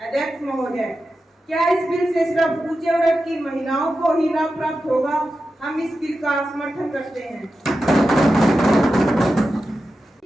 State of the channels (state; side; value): normal; both; correlation 0.91